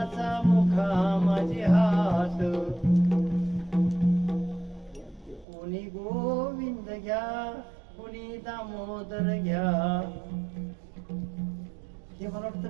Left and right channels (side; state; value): left; drops out; at 5.5 s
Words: मुखा माझे हात, कोणी गोविंद घ्या कोणी दामोदर घ्या. हे मला